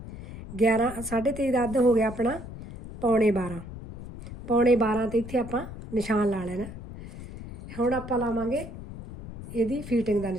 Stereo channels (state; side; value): noise; left; rumble, 12 dB below the sound